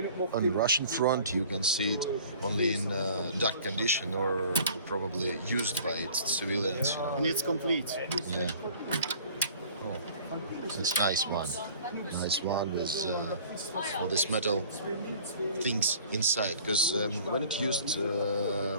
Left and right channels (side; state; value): both; inverted; correlation -0.48